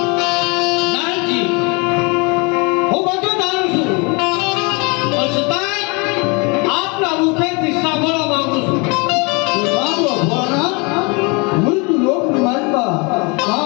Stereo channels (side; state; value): right; quieter; 30.1 dB